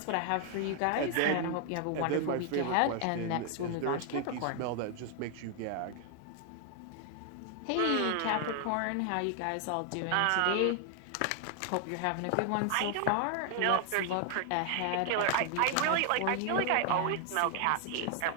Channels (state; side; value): different; both; correlation 0.00